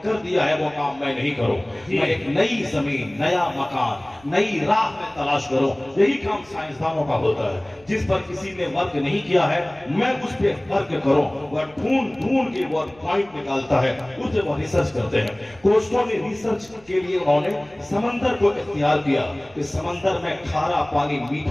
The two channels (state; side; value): noise; right; rumble, 28 dB below the sound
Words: कर दिया है वो काम मैं नहीं करूं, मैं एक नई जमीन, नया मकान, नई राह में तलाश करूं। यही काम साइंसदानों का होता है। जिस पर किसी ने वर्क नहीं किया है मैं उस पर वर्क करूं। वह ढूंढ के वो पॉइंट निकालता है, उसे वो रिसर्च करते हैं। कोस्टो ने रिसर्च के लिए उन्होंने समंदर को इख्तियार किया कि समंदर में खारा पानी,